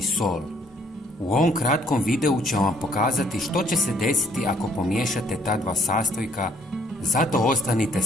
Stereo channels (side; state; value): both; normal; correlation 0.64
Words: sol? U ovom kratkom videu ću vam pokazati što će se desiti ako pomiješate ta dva sastojka, zato ostanite